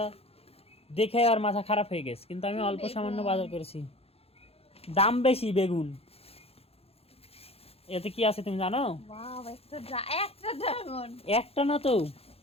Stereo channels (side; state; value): right; late; 0.29 ms